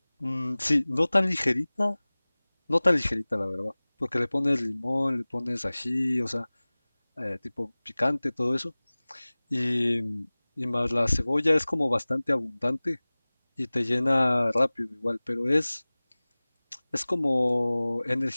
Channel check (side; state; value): both; inverted; correlation -1.00